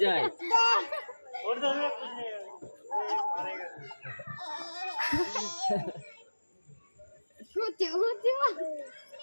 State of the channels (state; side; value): inverted; both; correlation -1.00